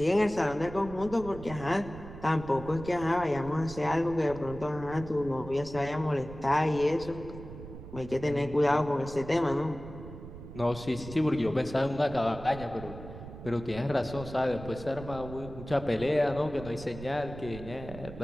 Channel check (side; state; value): right; noise; rumble, 13 dB below the sound